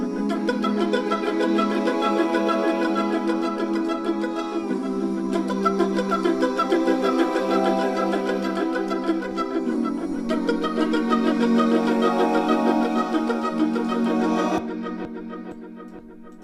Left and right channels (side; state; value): both; identical; correlation 1.00